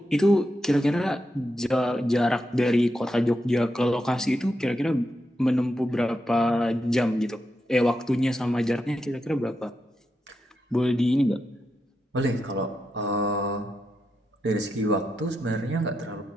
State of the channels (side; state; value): both; normal; correlation 0.86